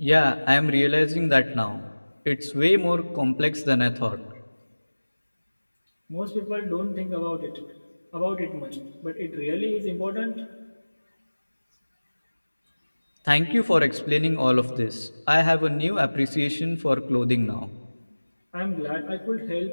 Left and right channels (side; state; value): both; inverted; correlation -1.00